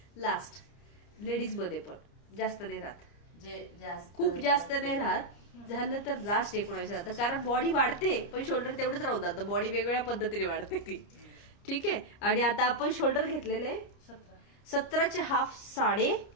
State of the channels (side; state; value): right; late; 30 ms